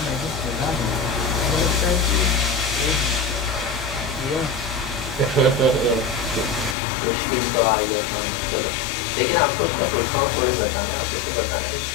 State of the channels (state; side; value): drops out; right; at 6.8 s